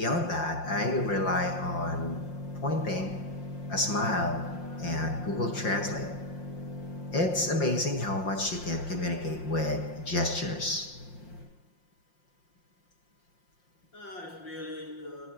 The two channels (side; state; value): right; late; 5.7 ms